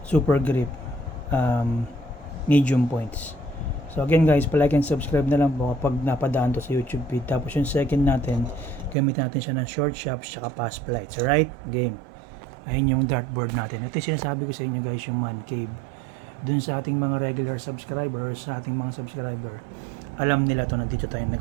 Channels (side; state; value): left; drops out; at 9.0 s